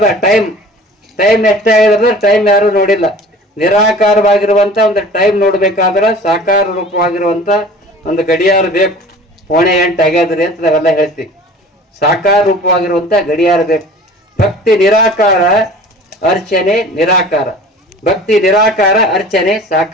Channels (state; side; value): normal; both; correlation 0.44